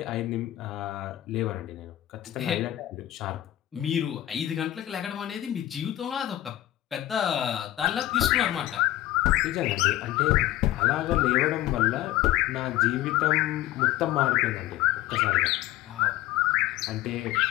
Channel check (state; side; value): quieter; right; 14.5 dB